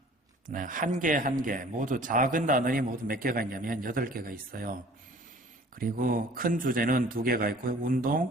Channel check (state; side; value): normal; both; correlation 0.50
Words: 한 개 모두 작은 단원이 모두 몇 개가 있냐면 8개가 있어요. 그리고 큰 주제는 2개가 있고요.